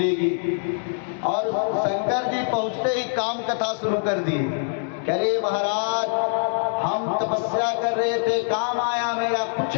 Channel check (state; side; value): silent; right; digital silence